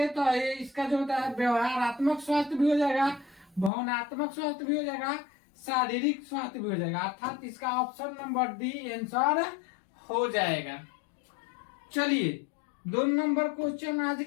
तो ये इसका जो होता है व्यवहारात्मक स्वास्थ्य भी हो जाएगा, भावनात्मक स्वास्थ्य भी हो जाएगा, शारीरिक स्वास्थ्य भी हो जाएगा। अर्थात इसका ऑप्शन नंबर डी आंसर हो जाएगा। चलिए 2 नंबर क्वेश्चन आज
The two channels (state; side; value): drops out; right; at 3.7 s